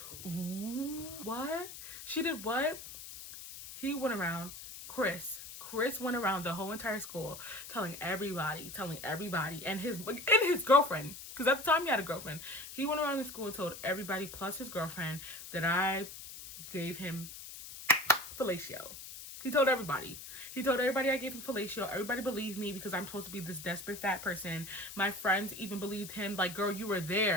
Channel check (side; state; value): left; noise; hiss, 12 dB below the sound